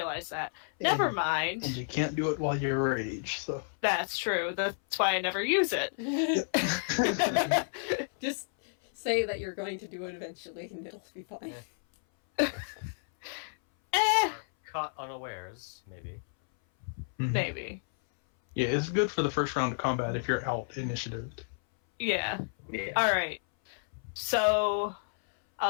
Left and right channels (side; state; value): right; silent; 57 dB below the other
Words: that. Never mind. And you can't do it while you're rage, so. That's true. That's why I never use it. Just say that you're going to do it eventually and it'll be fine. Caught unawares, maybe. Maybe. Yeah, it's good for the first round of combat if you're out initiative. Yeah. Yeah. Alright. So,